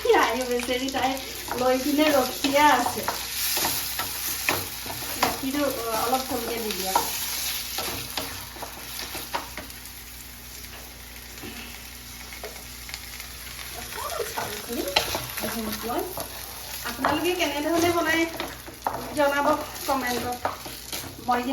আই বেচেৰি তাই লৈ কিনে ৰখিয়া আছে গাখীৰটো অলপ কমকৈ দি দিয়া চাউলখিনি ঘিউত লৈ আপোনালোকে কেনেধৰণে বনাই জনাব কমেণ্টত মই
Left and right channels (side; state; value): both; identical; correlation 1.00